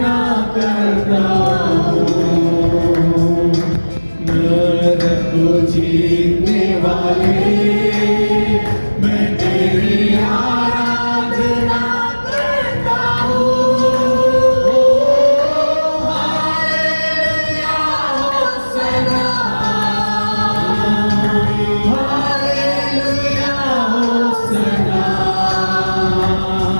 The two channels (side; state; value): both; inverted; correlation -1.00